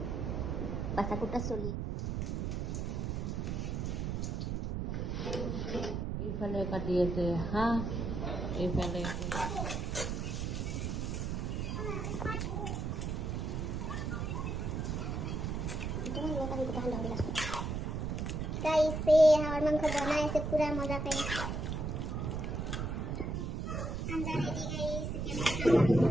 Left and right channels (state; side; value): noise; right; rumble, 2 dB below the sound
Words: বাসাকুটা চলি এইফালে কাটি আছে হাঁহ এইফালে कैसे हमार मांस बनाए से पूरा मजा पे अंडा ready guys